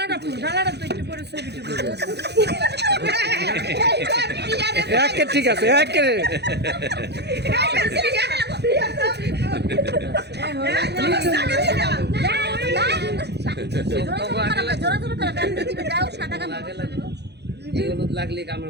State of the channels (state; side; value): late; left; 0.49 ms